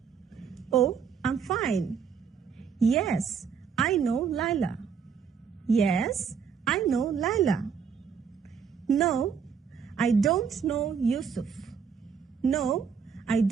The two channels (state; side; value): quieter; left; 6.6 dB